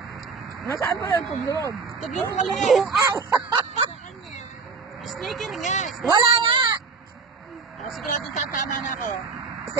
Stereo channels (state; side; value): quieter; left; 4.9 dB